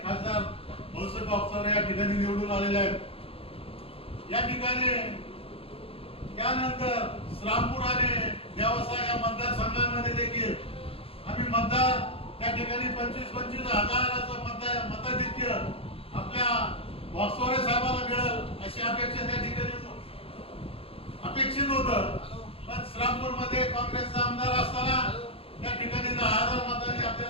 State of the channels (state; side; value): late; right; 0.27 ms